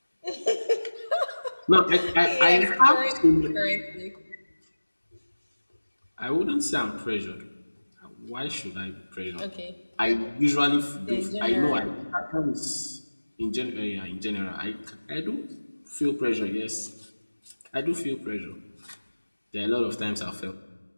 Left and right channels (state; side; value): inverted; both; correlation -1.00